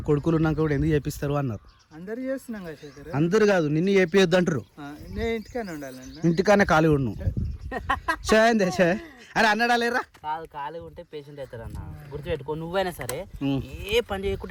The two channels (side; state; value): both; identical; correlation 1.00